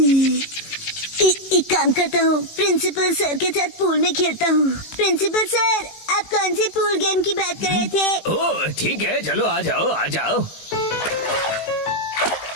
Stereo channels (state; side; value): late; right; 19 ms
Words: एक काम करता हूँ, प्रिंसिपल सर के साथ पूल में खेलता हूँ। प्रिंसिपल सर, आप कौन से पूल गेम की बात कर रहे थे? ओह ठीक है, चलो आ जाओ आ जाओ।